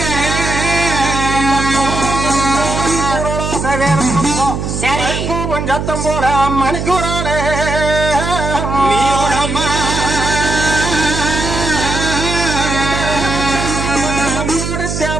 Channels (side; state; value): right; noise; hum, 3 dB below the sound